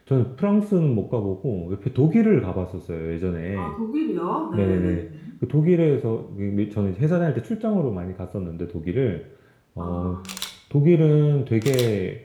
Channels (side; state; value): both; identical; correlation 1.00